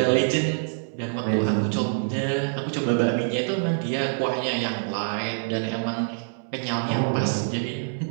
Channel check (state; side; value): silent; left; 61 dB below the other